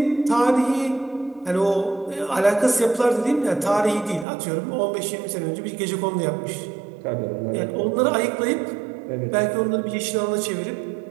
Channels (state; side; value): drops out; left; at 4.2 s